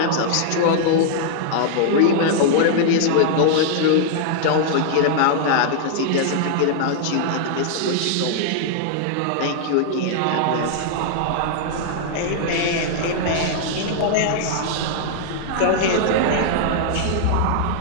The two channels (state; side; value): different; both; correlation -0.01